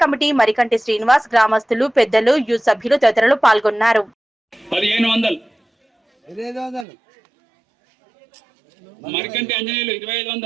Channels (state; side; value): drops out; left; at 6.9 s